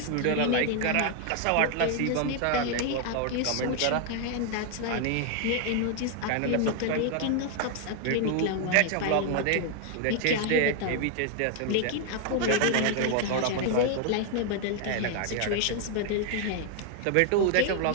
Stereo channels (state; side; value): different; both; correlation 0.00